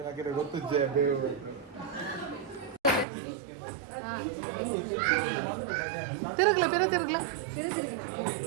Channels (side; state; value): left; drops out; at 3.1 s